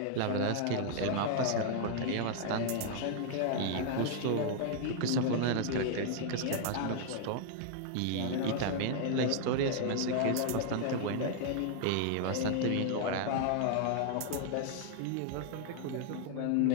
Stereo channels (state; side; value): different; both; correlation 0.00